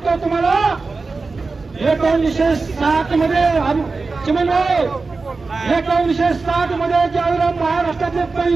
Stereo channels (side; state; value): left; quieter; 4.0 dB